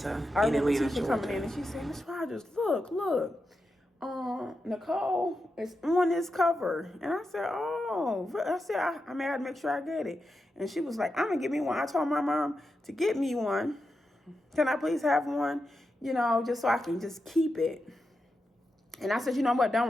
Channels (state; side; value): normal; both; correlation 0.88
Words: in Atlanta, Tisha coming in and she said, Miss Rogers, look. Nicole is on this cover. And I said, I had to make sure I get it. And she was like, I'm going to get me one. I told my mom to get me one. Can I please have one? You know, just so I can just keep it. And I said, you know what? Don't